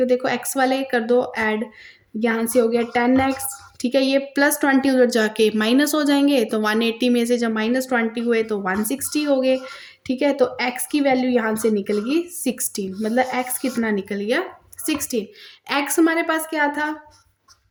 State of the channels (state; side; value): identical; both; correlation 1.00